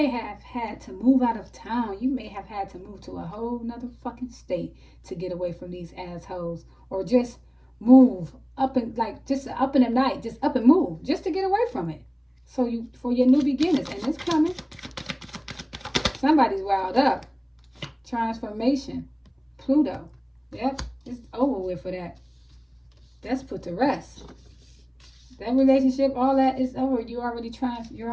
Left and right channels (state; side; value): identical; both; correlation 1.00